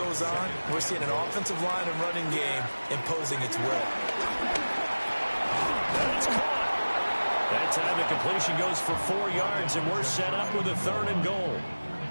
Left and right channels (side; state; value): both; inverted; correlation -1.00